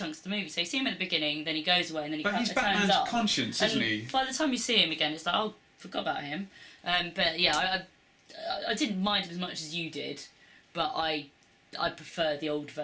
of the movie. So you see him at the beginning, then he goes away, and then he But he's turns Batman's up. conscience, isn't he? By the time you see him again, it's like, oh, forgot about him. But yeah, I didn't mind him as much as you did, but I prefer the old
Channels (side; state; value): both; identical; correlation 1.00